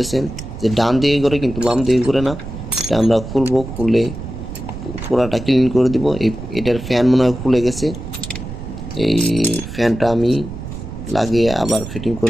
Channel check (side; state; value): right; noise; rumble, 10 dB below the sound